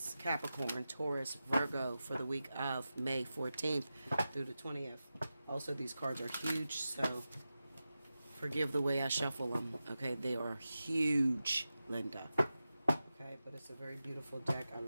Capricorn, Taurus, Virgo for the week of May 14th through the 20th. Also, these cards are huge, so forgive the way I shuffle them. Okay, they are huge, Linda. Okay, but it's a very beautiful deck. I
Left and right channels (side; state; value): both; inverted; correlation -0.93